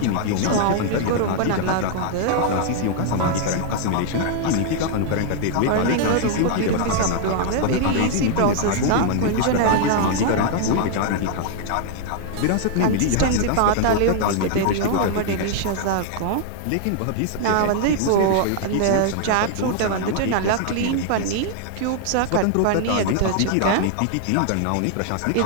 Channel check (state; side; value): different; both; correlation 0.00